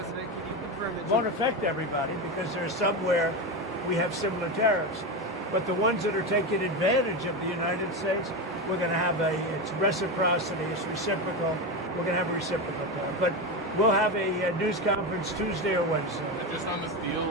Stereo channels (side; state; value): both; normal; correlation 0.16